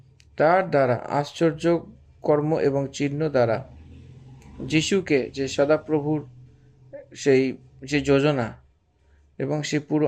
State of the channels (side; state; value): both; identical; correlation 1.00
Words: তার দ্বারা আশ্চর্য কর্ম এবং চিহ্ন দ্বারা যিশুকে যে সদাপ্রভুর সেই যে যোজনা এবং সে পুরো